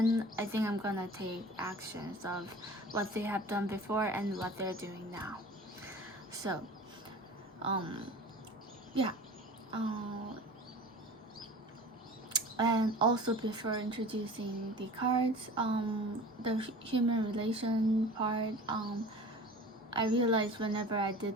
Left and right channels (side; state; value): both; normal; correlation 0.40